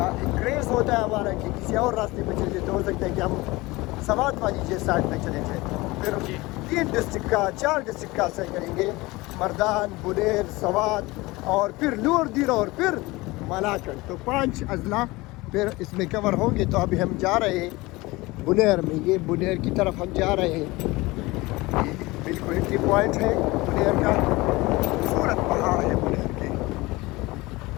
کریز ہوتا ہے ہمارا کہ کسی اور راستے پہ چلے جائے, تو ہو سکتا ہے کہ ہم سوات والی جیسے سائڈ پہ چلے جائیں. پھر 3 ڈسٹرکٹ کا 4 ڈسٹرکٹ کا سر کریں گے, مردان, بنیر, سوات, اور پھر لور دیر, اور پھر ملاکڑ. تو 5 اضلاع پھر اس میں کور ہوں گے. تو ابھی ہم جا رہے ہیں بنیر میں. یہ بنیر کی طرف ہم جا رہے ہیں. بالکل انٹری پوائنٹ ہے بنیر کا, خوبصورت پہاڑ ہے بنیر کے.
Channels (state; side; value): quieter; right; 21.5 dB